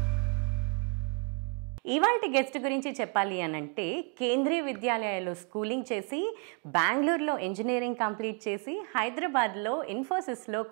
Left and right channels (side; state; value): left; quieter; 36.0 dB